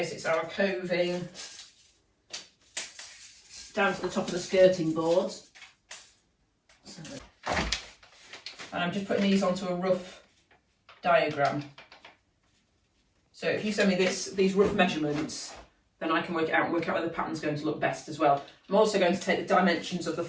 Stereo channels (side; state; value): both; identical; correlation 1.00